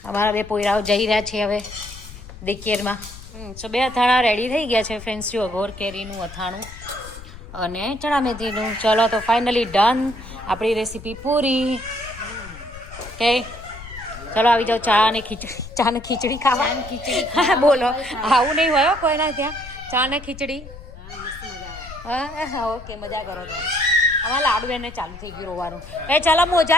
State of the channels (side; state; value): left; noise; rumble, 15 dB below the sound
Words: અમારા બે પોયરાઓ જઈ રહ્યા છે હવે દેખીરમાં. સો બે અથાણા રેડી થઈ ગયા છે ફ્રેન્ડ્સ. જો ગોર કેરીનું અથાણું અને ચણા મેથીનું. ચલો તો ફાઇનલી ડન આપણી રેસીપી પૂરી. ઓકે ચલો આવી જાઓ ચા ને ખીચડી ખાવા. હા બોલો આવું નહીં હોય કોઈના ત્યાં ચા ને ખીચડી. હા ઓકે મજા કરો તમે. અમારા લાડુ એને ચાલુ થઈ ગયું રોવાનું. એ ચાલો